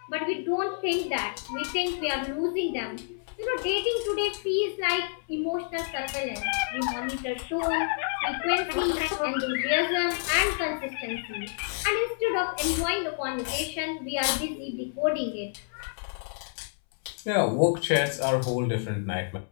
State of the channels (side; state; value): right; silent; 59 dB below the other